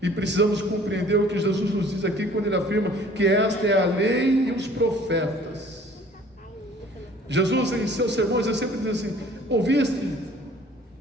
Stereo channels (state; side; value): normal; both; correlation 0.52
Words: E precisamos compreender o que Jesus nos diz aqui quando ele afirma que esta é a lei e os profetas. Jesus, em seus sermões, ele sempre diz assim: ouviste